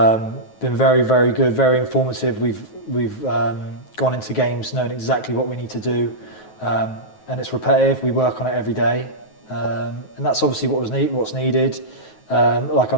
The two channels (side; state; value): right; late; 9.3 ms